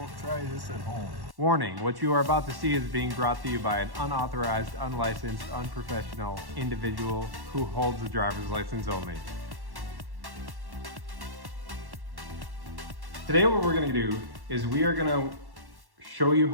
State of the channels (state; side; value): late; left; 1.1 ms